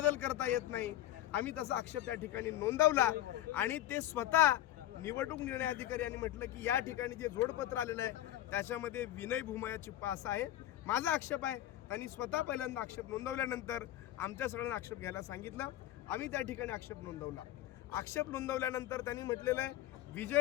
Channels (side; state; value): right; quieter; 13.7 dB